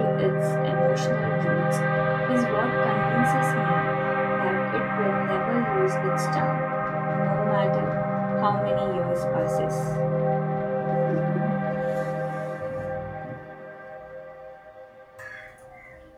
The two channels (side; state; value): both; identical; correlation 1.00